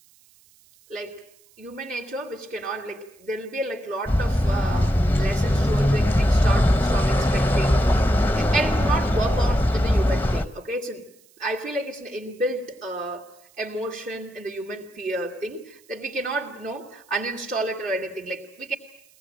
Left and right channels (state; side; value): noise; right; hiss, 30 dB below the sound